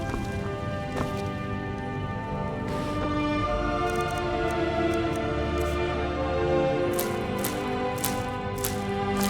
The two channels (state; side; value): identical; both; correlation 1.00